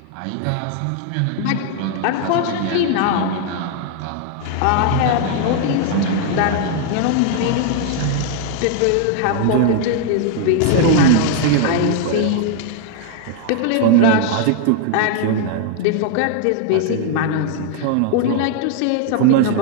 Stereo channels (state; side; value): different; both; correlation 0.00